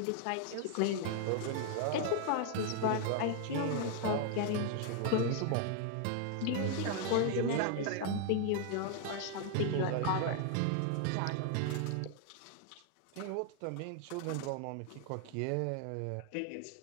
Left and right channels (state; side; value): different; both; correlation 0.00